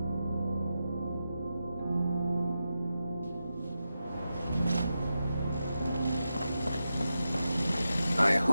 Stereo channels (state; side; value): inverted; both; correlation -0.90